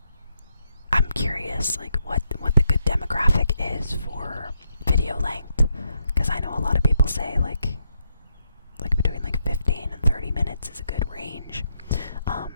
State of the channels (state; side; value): inverted; both; correlation -0.79